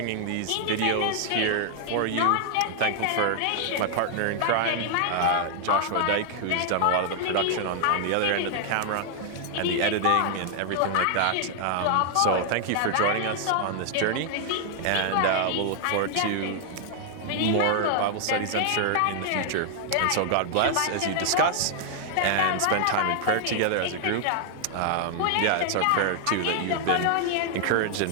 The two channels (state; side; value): different; both; correlation 0.00